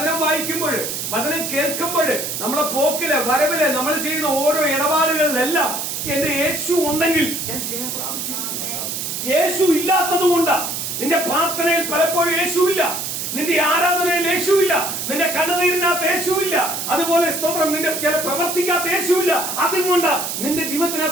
വായിക്കുമ്പോൾ, വചനം കേൾക്കുമ്പോൾ, നമ്മളെ പോക്കില് വരവില് നമ്മൾ ചെയ്യുന്ന ഓരോ ഇടപാടുകളിലെല്ലാം എന്റെ യേശു ഉണ്ടെങ്കിൽ ഞാൻ ജയം പ്രാപിച്ചിരിക്കുന്നു. യേശു ഇല്ലാത്തത് കൊണ്ടാ നിന്റെ പ്രാർത്ഥനയിൽ പലപ്പോഴും യേശുവില്ല, നിന്റെ ആരാധനയിൽ യേശുവില്ല, നിന്റെ കണ്ണുനീരിനകത്ത് യേശുവില്ല, അതുപോലെ സ്തോത്രം നിന്റെ ചില പ്രവർത്തിക്കാത്ത യേശുവില്ല. അതുകൊണ്ട് നിന്റെ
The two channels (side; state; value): right; noise; hiss, 4 dB below the sound